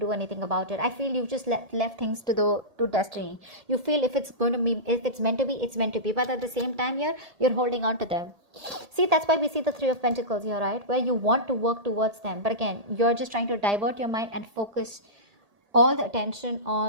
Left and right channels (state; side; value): late; left; 1.8 ms